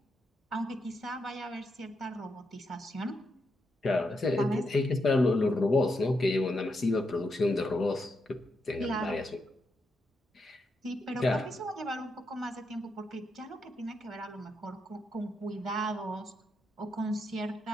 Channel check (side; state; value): both; normal; correlation 0.83